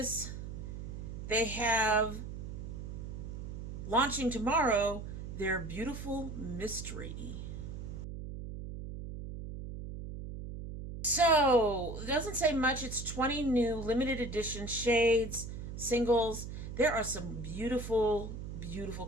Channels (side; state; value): right; noise; hum, 8 dB below the sound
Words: They have, launching tomorrow, their Beautiful Mystery. So, it doesn't say much. It's 20 new limited edition shades, singles. There are some beautiful, beautiful